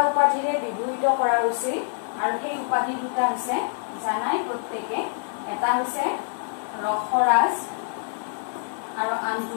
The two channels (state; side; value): silent; right; 61 dB below the other